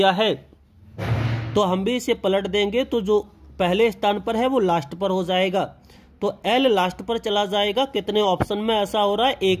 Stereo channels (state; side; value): identical; both; correlation 1.00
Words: है। तो हम भी इसे पलट देंगे तो जो पहले स्थान पर है वो लास्ट पर हो जाएगा, तो एल लास्ट पर चला जाएगा। कितने ऑप्शन में ऐसा हो रहा है, एक